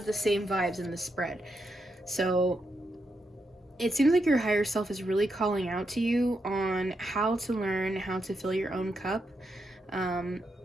the same vibes in the spread. So it seems like your higher self is really calling out to you on how to learn how to fill your own cup.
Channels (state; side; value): normal; both; correlation 0.83